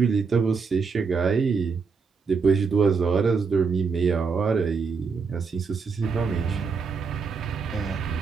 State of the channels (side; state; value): left; quieter; 5.2 dB